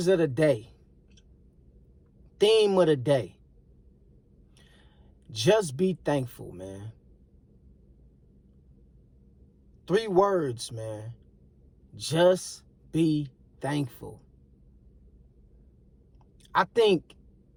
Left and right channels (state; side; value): identical; both; correlation 1.00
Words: of the day. Theme of the day. Just be thankful, man. 3 words, man. Just be thankful. I think